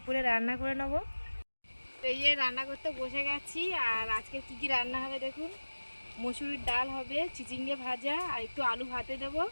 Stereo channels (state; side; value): inverted; both; correlation -1.00